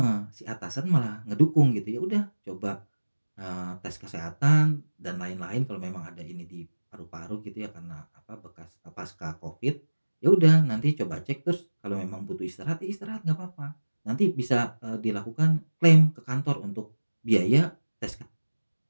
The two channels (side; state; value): both; inverted; correlation -1.00